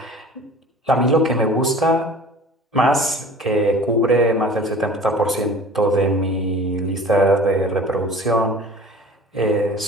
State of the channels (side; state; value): both; normal; correlation 0.43